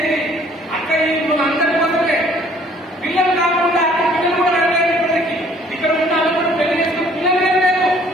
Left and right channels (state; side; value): normal; both; correlation 0.58